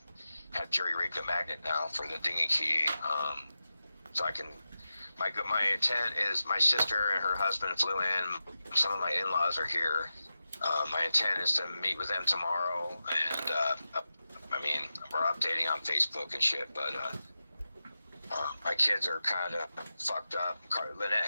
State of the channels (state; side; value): inverted; both; correlation -0.92